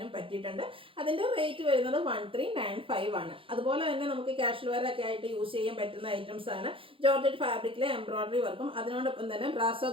പറ്റിയിട്ടുണ്ട്. അതിൻ്റെ റേറ്റ് വരുന്നത് 1395 ആണ്. അതുപോലെ തന്നെ നമുക്ക് കാഷ്വൽ വെയർ ഒക്കെ ആയിട്ട് യൂസ് ചെയ്യാൻ പറ്റുന്ന ഐറ്റംസ് ആണ്. ജോർജറ്റ് ഫാബ്രിക്കിലെ എംബ്രോയിഡറി വർക്കും അതിനോടൊപ്പം തന്നെ ബ്രാസോ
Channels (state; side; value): late; left; 0.26 ms